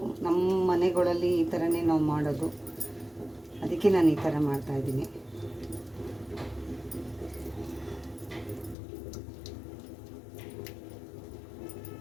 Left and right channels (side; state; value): right; drops out; at 8.8 s